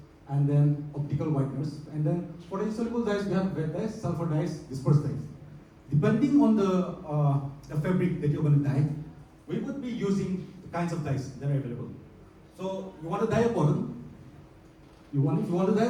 and then optical whiteners. And then for the insoluble dyes, we have wet dyes, sulfur dyes, dispersed dyes. Depending on the fabric that you're going to dye, we would be using the kinds of dyes that are available. So you want to dye a cotton. If you want to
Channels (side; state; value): both; identical; correlation 1.00